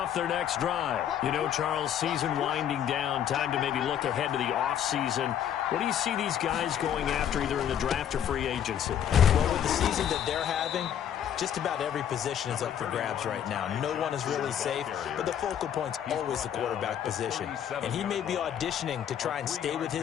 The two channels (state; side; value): quieter; right; 9.6 dB